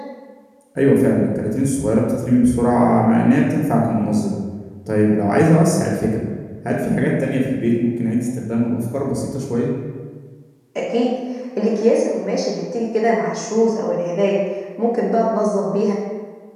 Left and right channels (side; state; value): both; identical; correlation 1.00